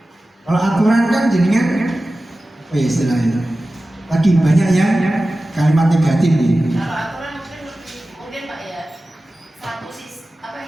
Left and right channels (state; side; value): normal; both; correlation 0.95